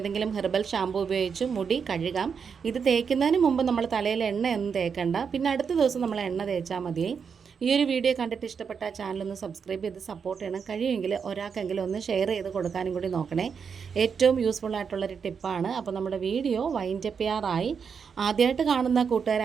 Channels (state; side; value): quieter; left; 6.4 dB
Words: ഹെർബൽ ഷാമ്പു ഉപയോഗിച്ച് മുടി കഴുകാം. ഇത് തേക്കുന്നതിന് മുമ്പ് നമ്മൾ തലയിൽ എണ്ണയൊന്നും തേക്കണ്ട. പിന്നെ അടുത്ത ദിവസം നമ്മൾ എണ്ണ തേച്ചാൽ മതിയേ. ഈ ഒരു വീഡിയോ കണ്ടിട്ട് ഇഷ്ടപ്പെട്ട ചാനലൊന്ന് സബ്സ്ക്രൈബ് ചെയ്ത് സപ്പോർട്ട് ചെയ്യണം. കഴിയുമെങ്കിൽ ഒരാൾക്കെങ്കിലും ഒന്ന് ഷെയർ ചെയ്ത് കൊടുക്കാനും കൂടി നോക്കണേ. ഏറ്റവും യൂസ്ഫുൾ ആയിട്ടുള്ളൊരു ടിപ്പാണ്. അപ്പോൾ നമ്മുടെ വീഡിയോ വൈൻഡപ്പ് ചെയ്യാറായി. ആദ്യമായിട്ട് കാണുന്ന കൂട്ടുകാർ